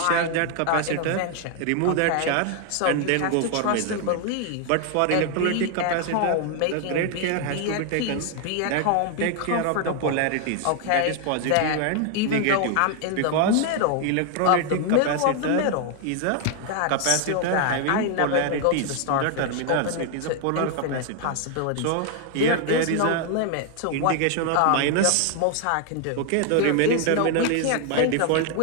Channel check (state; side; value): different; both; correlation 0.00